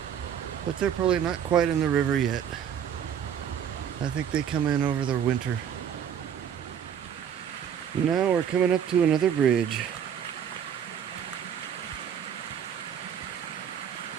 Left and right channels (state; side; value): quieter; left; 8.6 dB